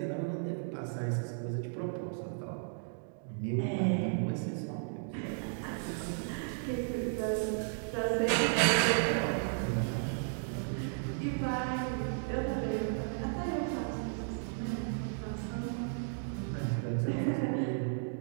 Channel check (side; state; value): left; silent; digital silence